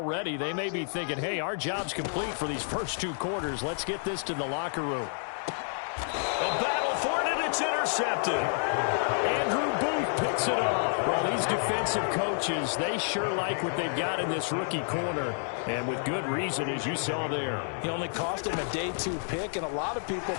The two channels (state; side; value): silent; right; 58 dB below the other